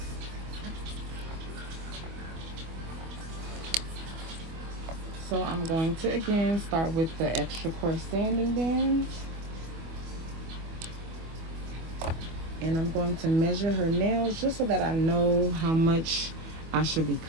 So I'm going to, again, start with the extra coarse sanding bands. And I'm going to measure her nails just so that I know how much I should be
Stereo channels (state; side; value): late; left; 25 ms